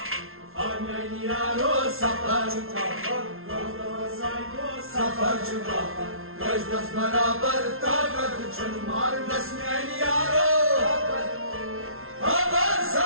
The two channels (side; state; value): left; late; 0.61 ms